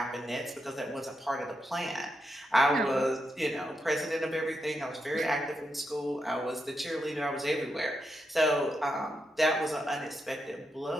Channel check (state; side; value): normal; both; correlation 0.84